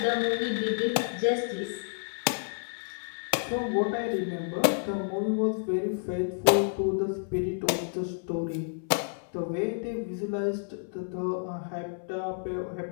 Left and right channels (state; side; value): silent; right; 58 dB below the other